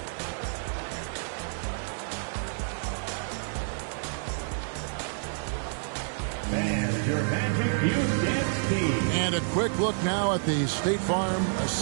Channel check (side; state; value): left; silent; digital silence